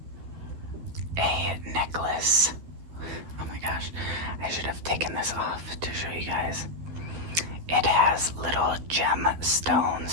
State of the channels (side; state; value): left; late; 12 ms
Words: a necklace. Oh my gosh, I should have taken this off to show you guys. It has little